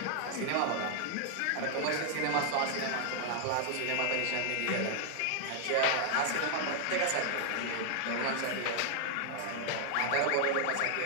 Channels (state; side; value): different; both; correlation 0.00